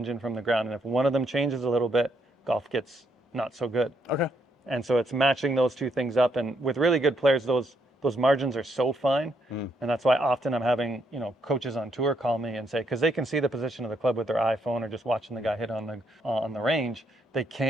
from the ground. And if one of them changes a little bit, golf gets not so good. Okay. And so it's matching those two things up. And with really good players, those margins are so fine. And that's why often I'm having, coaches on tour call me and say, because they can see the position of the club with their iPhone or just watching the guy hit on the range, they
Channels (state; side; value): normal; both; correlation 0.75